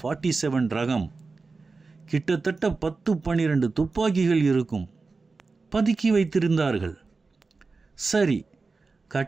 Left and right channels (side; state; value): left; quieter; 4.1 dB